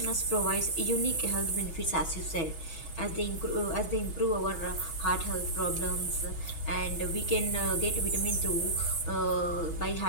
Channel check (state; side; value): late; right; 6.2 ms